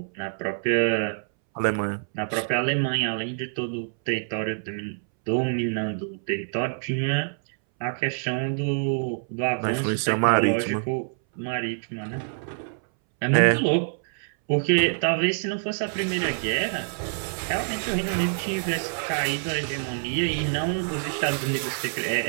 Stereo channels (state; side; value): silent; left; 61 dB below the other